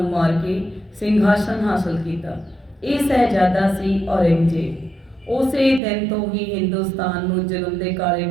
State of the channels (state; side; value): drops out; left; at 5.8 s